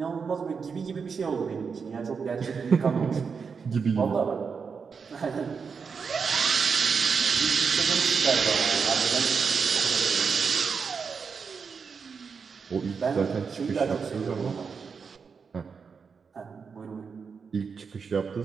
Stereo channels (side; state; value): left; quieter; 5.7 dB